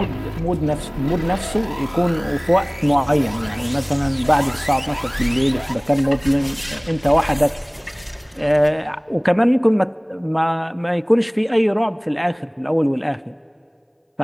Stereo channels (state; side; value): identical; both; correlation 1.00